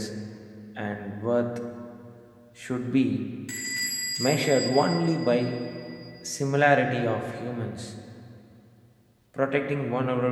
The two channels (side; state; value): both; identical; correlation 1.00